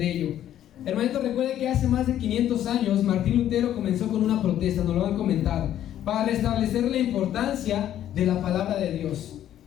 ello. Hermanito, recuerde que hace más de 500 años Martín Lutero comenzó con una protesta, nos lo han comentado, para restablecer la importancia de la palabra de Dios.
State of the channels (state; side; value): quieter; right; 11.5 dB